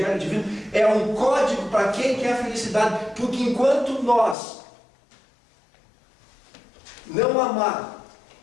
divino, é um código para quem quer a felicidade. Porque enquanto nós não amar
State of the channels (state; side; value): drops out; right; at 4.4 s